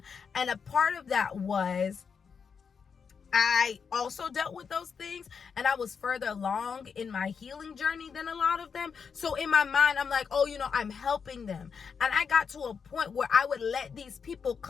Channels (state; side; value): quieter; right; 6.2 dB